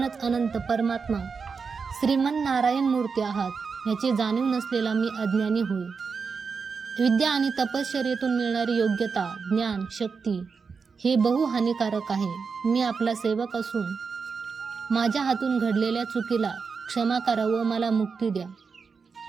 अनंत परमात्मा श्रीमन नारायण मूर्ती आहात याची जाणीव नसलेला मी अज्ञानी होय. विद्या आणि तपश्चर्येतून मिळणारी योग्यता, ज्ञान, शक्ती हे बहु हानिकारक आहे. मी आपला सेवक असून माझ्या हातून घडलेल्या चुकीला क्षमा करा व मला मुक्ती द्या.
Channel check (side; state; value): left; quieter; 5.3 dB